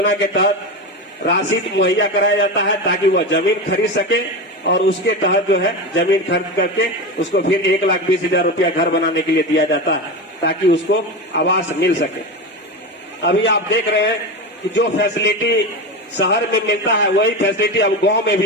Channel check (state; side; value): normal; both; correlation 0.21